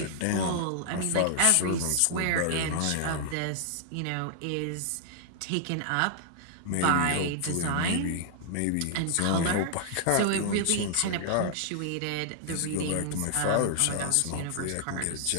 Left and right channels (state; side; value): different; both; correlation 0.00